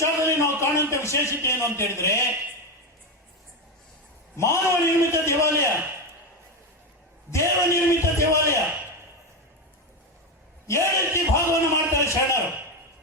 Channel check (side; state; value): both; normal; correlation 0.13